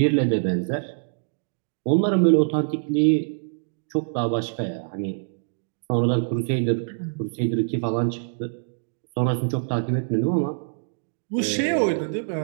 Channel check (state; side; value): silent; left; digital silence